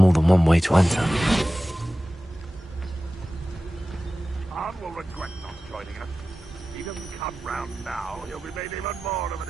than one way to enter. Khan will regret not joining us. If he doesn't come round now, he'll be made even more of an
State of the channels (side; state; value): both; normal; correlation 0.95